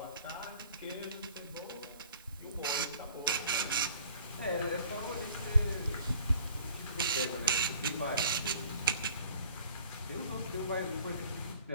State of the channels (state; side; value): inverted; both; correlation -0.52